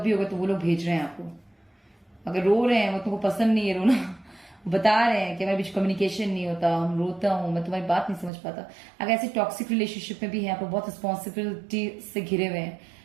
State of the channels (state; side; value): drops out; left; at 8.3 s